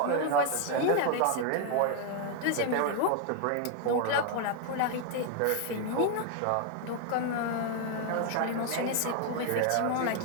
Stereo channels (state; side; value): different; both; correlation 0.00